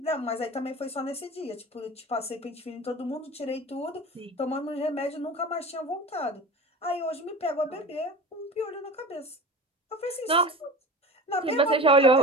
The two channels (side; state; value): both; normal; correlation 0.33